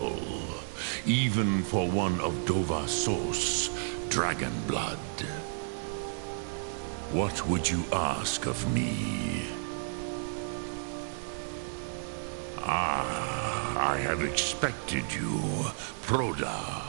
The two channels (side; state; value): left; silent; digital silence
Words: Even for one of Dova Sos, dragon blood. What would you ask of me? I have expected you, Proda.